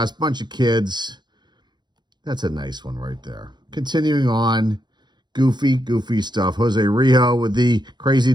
bunch of kids. That's a nice one right there. Continuing on, goofy stuff. Jose Rijo with the crazy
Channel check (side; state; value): left; late; 0.21 ms